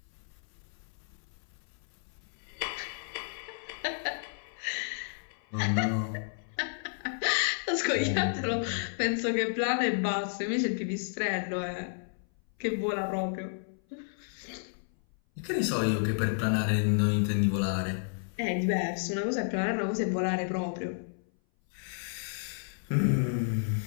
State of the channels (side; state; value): right; silent; 57 dB below the other